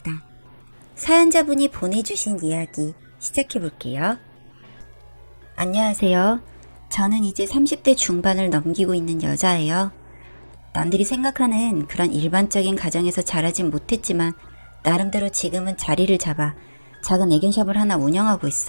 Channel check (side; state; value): both; inverted; correlation -1.00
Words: 사연자분이 보내주신 이야기 시작해볼게요. 안녕하세요. 저는 이제 30대 중반을 넘기고 있는 여자예요. 남들이 생각하는 그런 일반적인 가정에서 자라진 못했지만 나름대로 지금은 자리를 잡아 작은 애견샵을 하나 운영하고